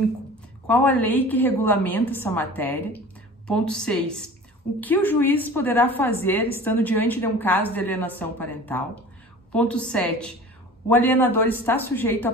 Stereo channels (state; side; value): normal; both; correlation 0.41